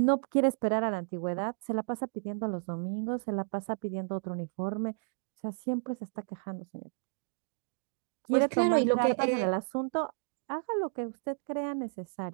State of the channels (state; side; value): silent; left; digital silence